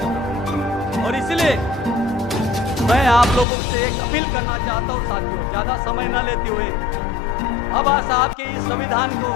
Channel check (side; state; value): right; drops out; at 3.5 s